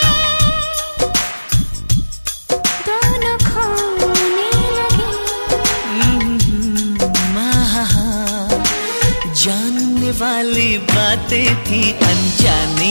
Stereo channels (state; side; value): inverted; both; correlation -1.00